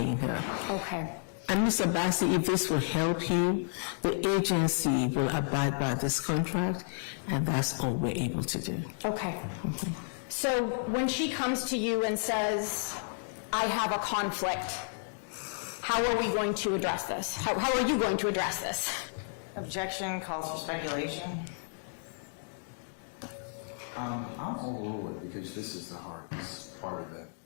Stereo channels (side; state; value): right; silent; digital silence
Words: her. Okay. And Ms. Abbasi, if this will help you, the agency will abide by this contract, and that's all we're able to do. Okay. So when she comes to you and says, I have a conflict, how are we going to address this? How are you going to address this? Objection calls for speculation. I'm overrule it because this is the hardest part of the